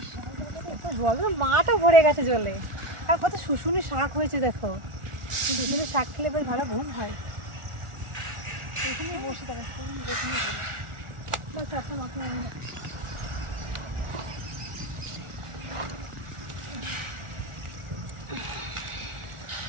জল মাটা ভরে গেছে জলে। আর কত শুশুনি শাক হয়েছে দেখো, শুশুনি শাক খেলে বেশ ভালো ঘুম হয়। এখানে বসে থাকো, চারটা মাথা আমি না।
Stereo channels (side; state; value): left; late; 1.4 ms